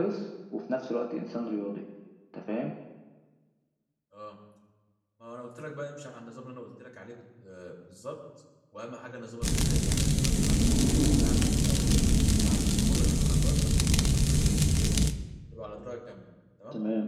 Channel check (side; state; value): both; identical; correlation 1.00